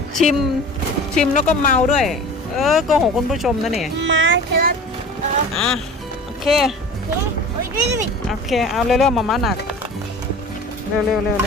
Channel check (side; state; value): both; normal; correlation 0.39